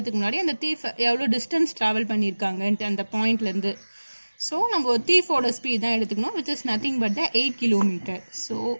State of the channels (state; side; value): inverted; both; correlation -1.00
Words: முன்னாடி அந்த தீஃப் எவ்வளோ டிஸ்டன்ஸ் ட்ராவல் பண்ணியிருக்காங்கன்ட்டு அந்த பாயிண்ட்லேருந்து. ஸோ நம்ம தீஃபோட ஸ்பீட் தான் எடுத்துக்கணும், which is nothing but the 8 kilometre. So